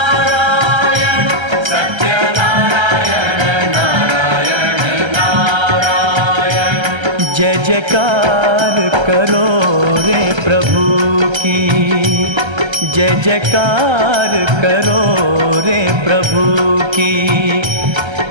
सत्यनारायण नारायण नारायण। जय जयकार करो रे प्रभु की, जय जयकार करो रे प्रभु की।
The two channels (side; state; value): left; late; 1.3 ms